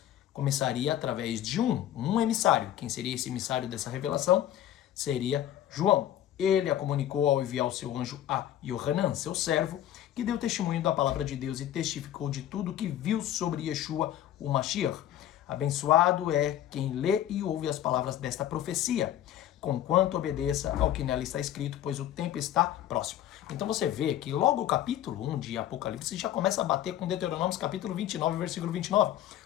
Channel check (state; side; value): quieter; right; 11.9 dB